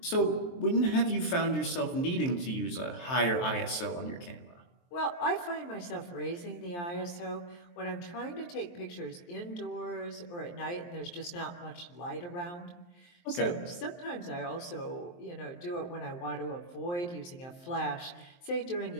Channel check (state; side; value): late; right; 23 ms